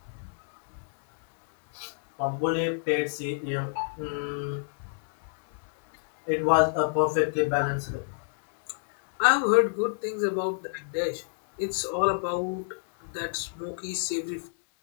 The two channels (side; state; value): right; silent; digital silence